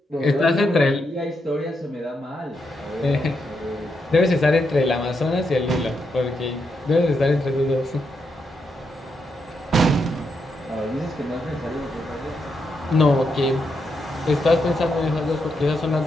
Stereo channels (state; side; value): normal; both; correlation 0.82